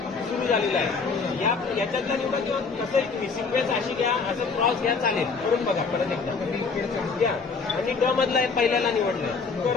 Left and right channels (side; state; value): right; quieter; 4.8 dB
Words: सुरू झालेला आहे. याच्यातला निवडा किंवा कसं सिक्वेन्स अशी घ्या, असं क्रॉस घ्या, चालेल. करून बघा परत एकदा घ्या. आणि ड मधला पहिल्याला निवडलाय